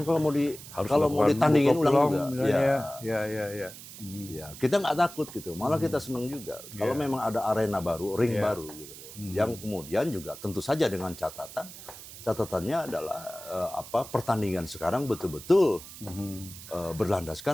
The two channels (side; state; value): right; noise; hiss, 15 dB below the sound